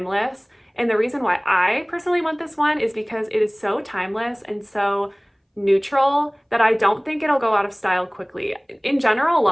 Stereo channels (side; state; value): both; identical; correlation 1.00